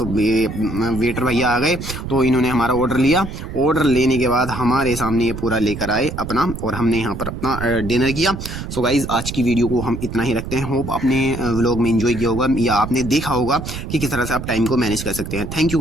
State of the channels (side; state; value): right; noise; rumble, 8 dB below the sound